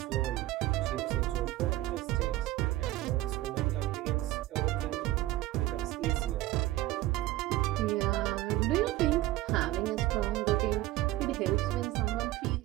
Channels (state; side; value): quieter; left; 16.5 dB